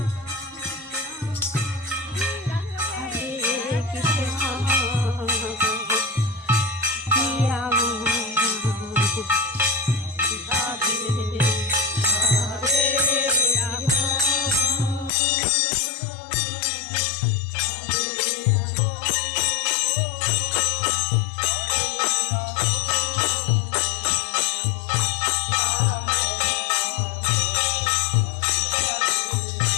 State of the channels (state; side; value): drops out; right; at 15.1 s